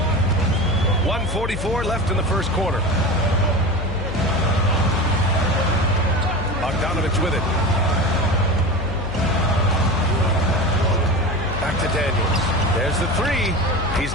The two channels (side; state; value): left; noise; hum, 6 dB below the sound